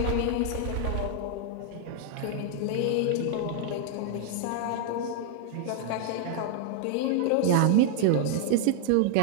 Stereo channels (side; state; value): both; different; correlation 0.00